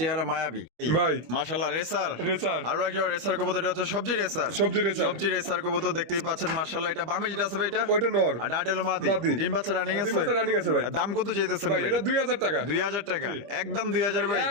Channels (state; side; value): late; left; 25 ms